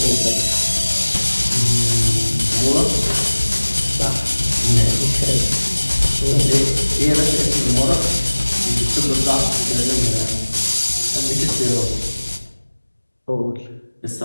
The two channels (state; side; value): inverted; both; correlation -1.00